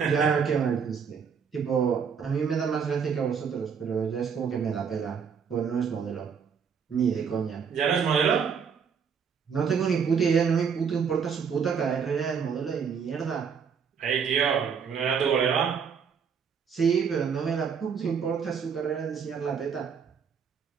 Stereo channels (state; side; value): quieter; left; 6.6 dB